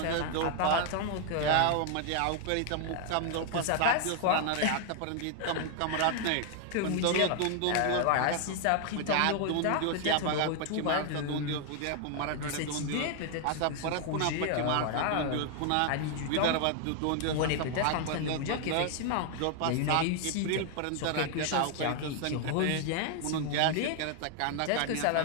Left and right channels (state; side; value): different; both; correlation 0.00